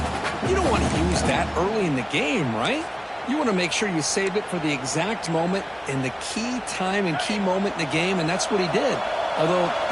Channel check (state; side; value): identical; both; correlation 1.00